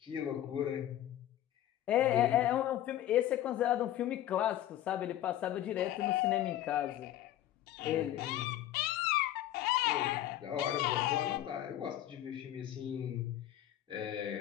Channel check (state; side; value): quieter; right; 12.8 dB